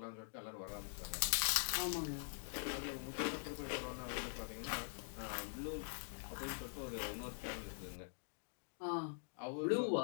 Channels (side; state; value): right; silent; digital silence